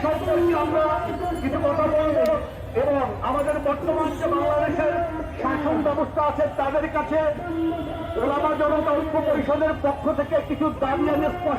সম্পর্কে আমরা কিছু কথা বলব এবং আমাদের বর্তমান যে বাংলাদেশের শাসন ব্যবস্থা আছে তাদের কাছে ওলামা জনতা ঐক্য পরিষদের পক্ষ থেকে কিছু দাবি আমি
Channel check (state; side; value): identical; both; correlation 1.00